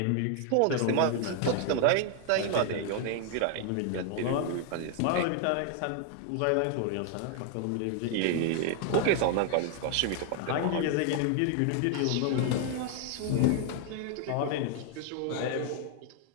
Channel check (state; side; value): different; both; correlation 0.00